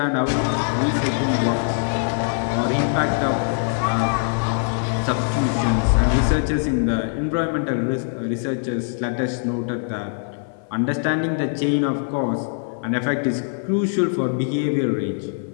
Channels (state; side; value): silent; right; 64 dB below the other